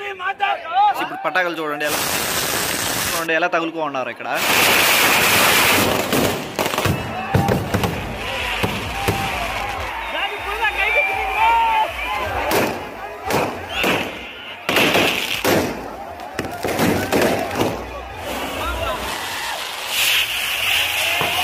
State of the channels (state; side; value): identical; both; correlation 1.00